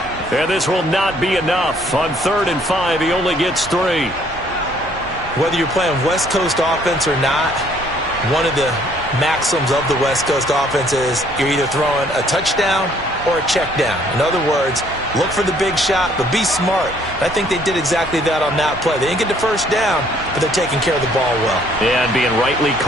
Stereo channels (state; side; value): normal; both; correlation 0.62